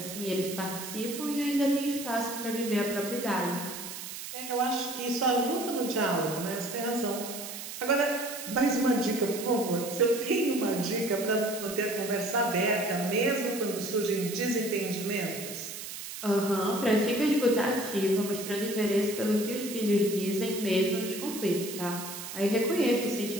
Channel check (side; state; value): right; noise; hiss, 9 dB below the sound